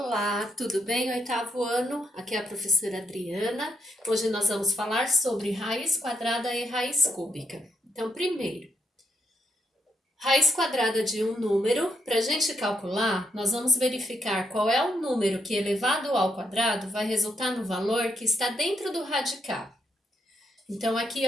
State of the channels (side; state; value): both; normal; correlation 0.77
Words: tudo bem? Oitavo ano, aqui é a professora Adriana. Hoje nós vamos falar sobre raiz quadrada e raiz cúbica. Então, primeiro, raiz quadrada de um número. Para a gente calcular, nós vamos verificar qual é o número que elevado ao quadrado vai resultar no valor que está dentro do radical. Então, aqui